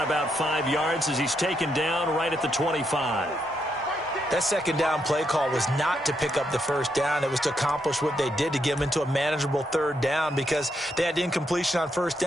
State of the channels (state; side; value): normal; both; correlation 0.79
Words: about 5 yards as he's taken down right at the 25. That second down play call was not to pick up the first down. It was to accomplish what they did to get them into a manageable third down because they had incompletion on first